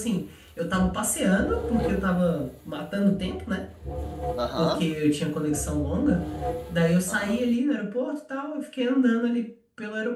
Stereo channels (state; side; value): identical; both; correlation 1.00